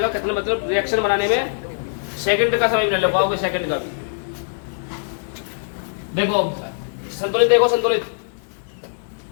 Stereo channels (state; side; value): silent; right; digital silence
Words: कितने मतलब रिएक्शन बनाने में सेकंड का समय ले पाओगे, सेकंड का भी। देखो संतुलित, देखो संतुलित